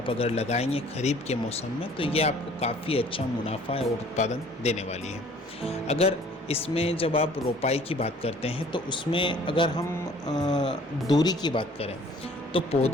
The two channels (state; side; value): normal; both; correlation 0.54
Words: अगर लगाएंगे खरीफ के मौसम में तो ये आपको काफ़ी अच्छा मुनाफा और उत्पादन देने वाली है। अगर इसमें जब आप रोपाई की बात करते हैं तो उसमें अगर हम दूरी की बात करें तो